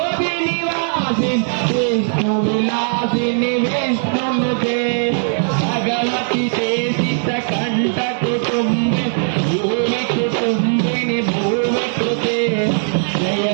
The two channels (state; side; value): silent; left; digital silence